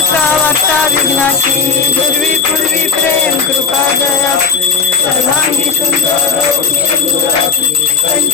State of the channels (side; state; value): right; quieter; 5.4 dB